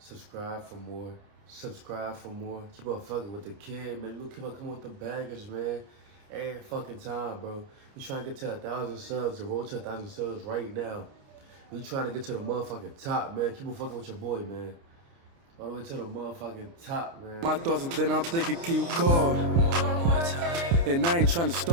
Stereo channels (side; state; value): left; late; 29 ms